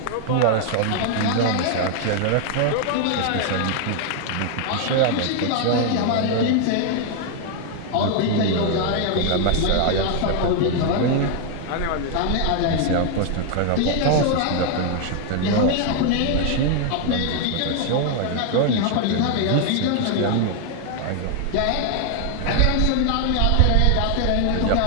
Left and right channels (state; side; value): different; both; correlation 0.00